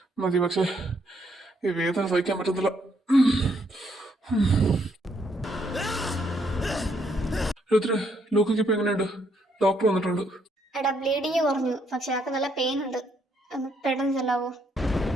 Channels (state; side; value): normal; both; correlation 0.72